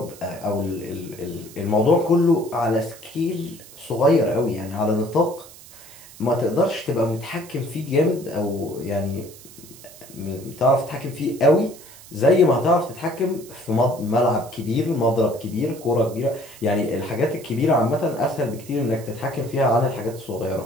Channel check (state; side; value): noise; right; hiss, 20 dB below the sound